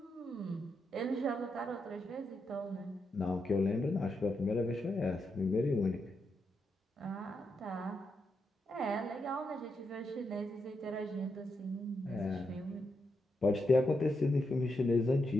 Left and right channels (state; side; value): normal; both; correlation 0.83